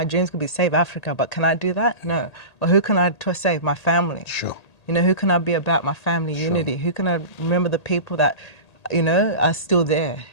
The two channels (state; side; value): late; right; 1.8 ms